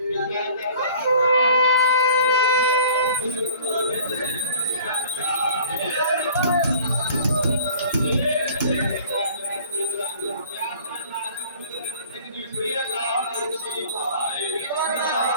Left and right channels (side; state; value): both; inverted; correlation -0.50